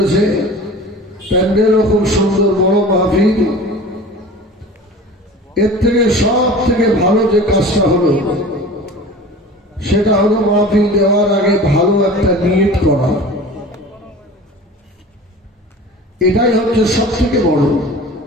প্যান্ডেলও খুব সুন্দর, বড় মাহফিল। এর থেকে সব থেকে ভালো যে কাজটা হলো সেটা হলো মাহফিল দেওয়ার আগে ভালো একটা নিয়ত করা। এটাই হচ্ছে সব থেকে বড়।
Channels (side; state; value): both; normal; correlation 0.39